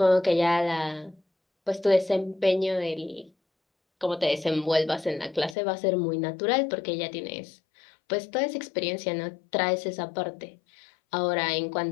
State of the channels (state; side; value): drops out; right; at 5.6 s